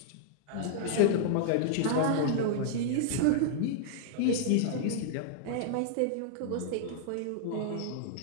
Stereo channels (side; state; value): both; different; correlation -0.01